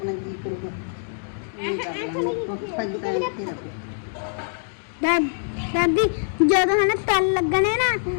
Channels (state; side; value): silent; right; digital silence